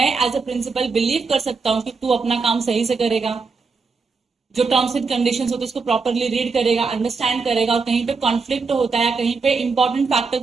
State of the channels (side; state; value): left; quieter; 4.6 dB